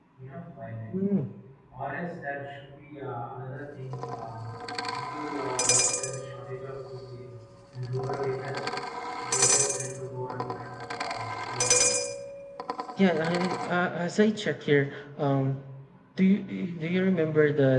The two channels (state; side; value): identical; both; correlation 1.00